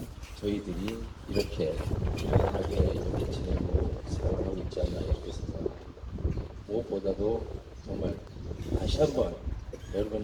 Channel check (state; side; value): identical; both; correlation 1.00